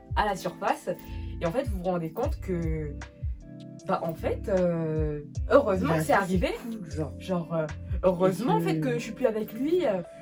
à la surface. Et en fait, vous vous rendez compte que, bah, en fait, heureusement que c'est arrivé. Genre, heureusement en fait que je suis plus avec lui,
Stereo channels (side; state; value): both; identical; correlation 1.00